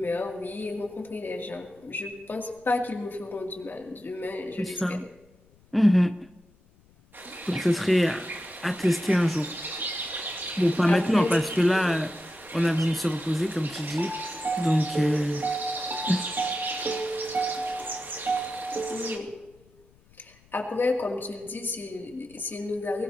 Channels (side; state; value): left; noise; rumble, 30 dB below the sound